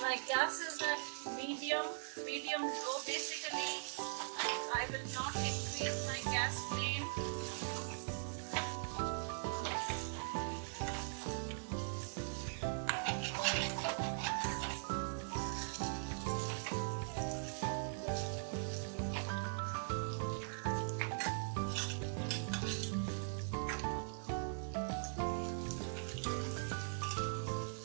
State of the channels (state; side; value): silent; left; 50 dB below the other